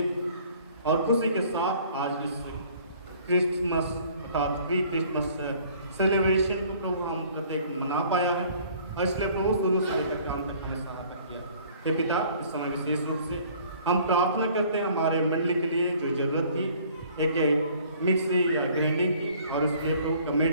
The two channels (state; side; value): inverted; both; correlation -0.55